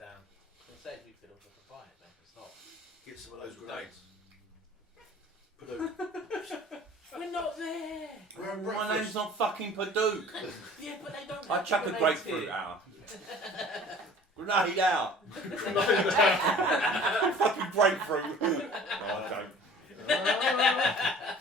It says we could have buy it, man. It's not. Get some of those grenades. We're not there. We're at My breakfast. name's not fucking Padook. Yeah, but they don't. I have chuck a grenades grapefruit here. out. Grenade out. Fucking grapefruit. No, I don't.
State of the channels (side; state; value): both; normal; correlation 0.47